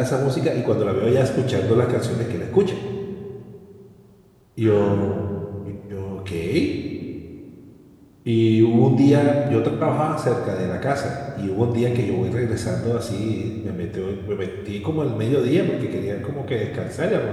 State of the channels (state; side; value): identical; both; correlation 1.00